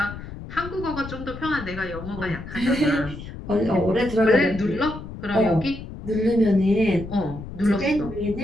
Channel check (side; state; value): left; noise; rumble, 11 dB below the sound